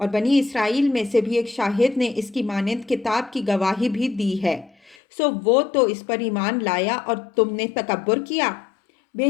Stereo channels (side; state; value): right; drops out; at 5.0 s